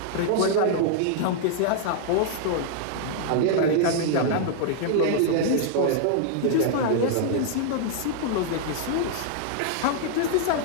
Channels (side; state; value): both; different; correlation -0.01